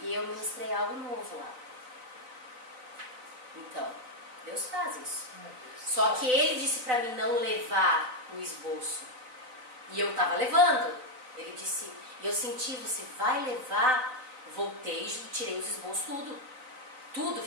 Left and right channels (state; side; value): late; left; 4.0 ms